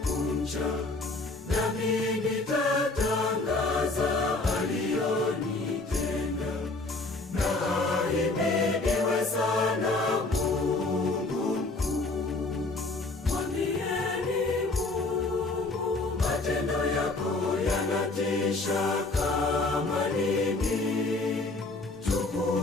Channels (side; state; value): right; quieter; 3.2 dB